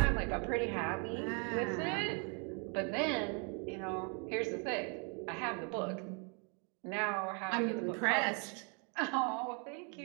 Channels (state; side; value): quieter; left; 37.0 dB